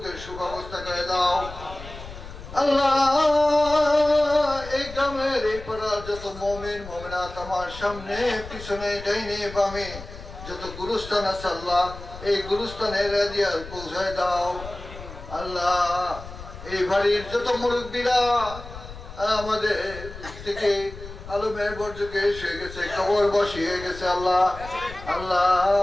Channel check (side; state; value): left; noise; rumble, 13 dB below the sound